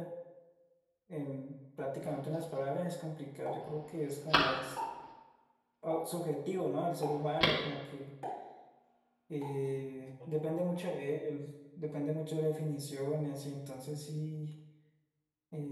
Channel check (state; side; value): identical; both; correlation 1.00